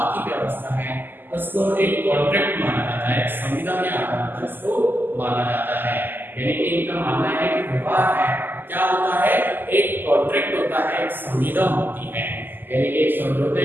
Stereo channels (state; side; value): late; left; 0.091 ms